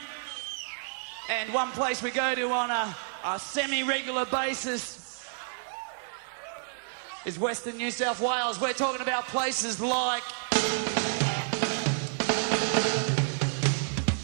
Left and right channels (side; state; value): left; silent; digital silence